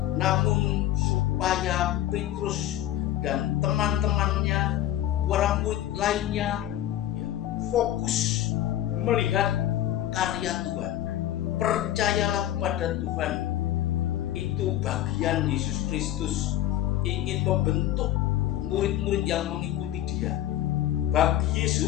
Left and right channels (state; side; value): quieter; right; 12.8 dB